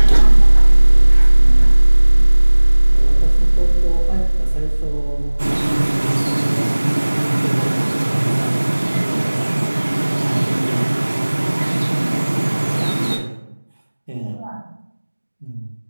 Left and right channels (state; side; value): inverted; both; correlation -1.00